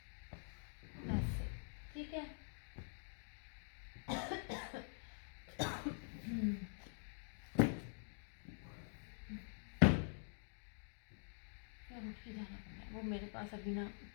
ऐसे। ठीक है यार उठ के जाना पड़ना है, वो मेरे पास अभी ना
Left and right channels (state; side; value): silent; right; digital silence